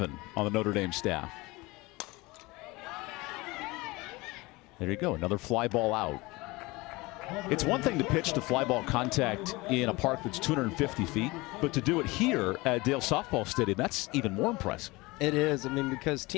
on the Notre Dame staff. There you go, another fly ball out. It's one thing to pitch to fly ball contact in a park that's 250 feet, but to do it here at Dale Softball Stadium, that's even more impressive. It is. I mean, because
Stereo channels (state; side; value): quieter; right; 22.7 dB